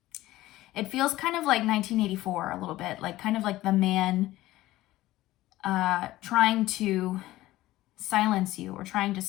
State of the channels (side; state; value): right; quieter; 16.5 dB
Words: it feels kind of like 1984 a little bit, like kind of like the man trying to silence you or trying to